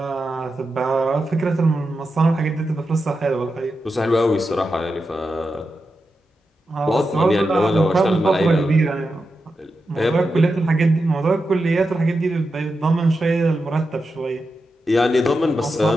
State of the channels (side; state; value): both; normal; correlation 0.89